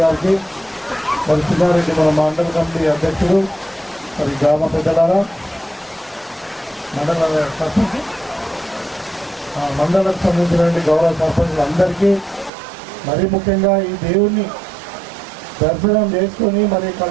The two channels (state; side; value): drops out; left; at 12.5 s